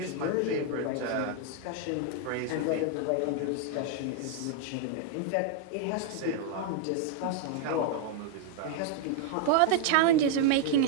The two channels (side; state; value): both; different; correlation 0.00